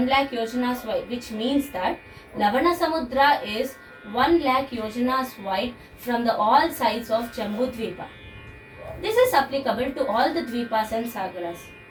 lakh yojanas wide, which means that Lavana Samudra is 1 lakh yojanas wide from the all sides of Jambudvipa. This is applicable to all the Dvipas and Sagaras.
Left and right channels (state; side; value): identical; both; correlation 1.00